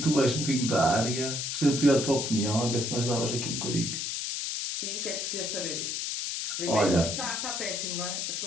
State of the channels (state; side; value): noise; left; hiss, 2 dB below the sound